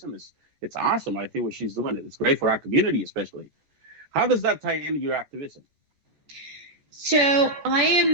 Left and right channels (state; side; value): late; left; 14 ms